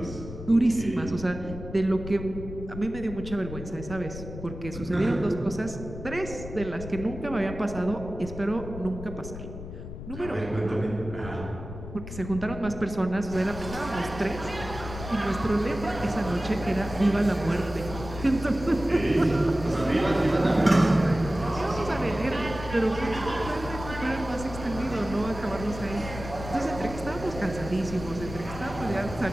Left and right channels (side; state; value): left; noise; rumble, 10 dB below the sound